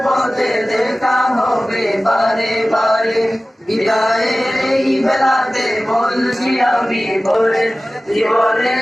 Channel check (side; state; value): both; normal; correlation 0.97